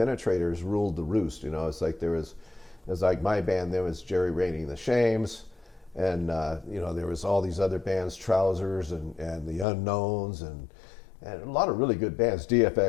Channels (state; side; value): drops out; right; at 9.7 s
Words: ruled the roost. It's like it's like my band, there was Jerry Rainey and the Shames, and there was all these other bands, Trousers and the Unknowns, and a lot of really good bands,